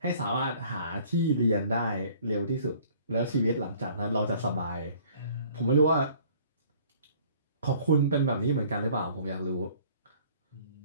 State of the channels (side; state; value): both; inverted; correlation -0.55